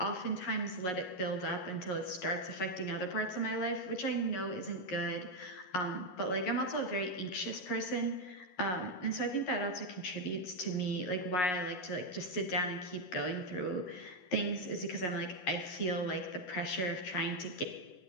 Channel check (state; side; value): late; right; 11 ms